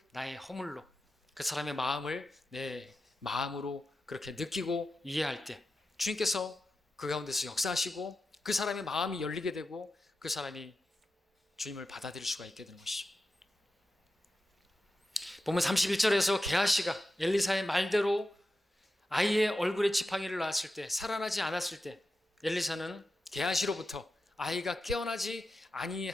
나의 허물로, 그 사람의 마음을 내 마음으로 그렇게 느끼고 이해할 때 주님께서 그 가운데서 역사하시고 그 사람의 마음이 열리게 되고 그 사람이 주님을 받아들일 수가 있게 되는 것이죠. 보면 31절에서 게하시가 엘리사의 말대로 아이의 얼굴에 지팡이를 놨을 때, 살아나지 않았을 때 엘리사는 게하시로부터 아이가 깨어나지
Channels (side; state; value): both; normal; correlation 0.91